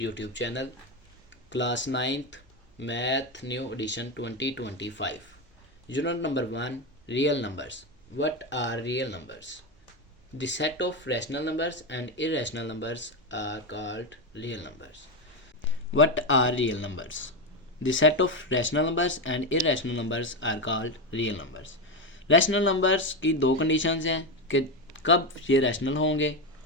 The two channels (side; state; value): both; normal; correlation 0.12